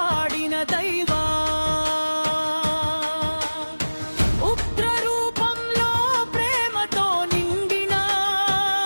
దైవా, ఉగ్ర రూపంలో ప్రేమతో నిండిన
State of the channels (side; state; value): both; inverted; correlation -1.00